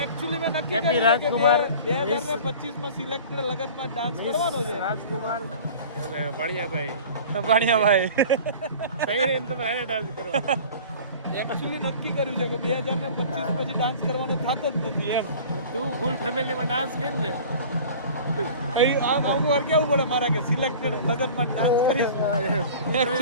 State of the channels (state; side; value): inverted; both; correlation -0.42